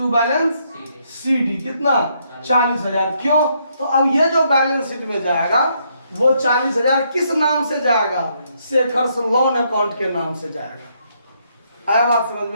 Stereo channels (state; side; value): inverted; both; correlation -0.74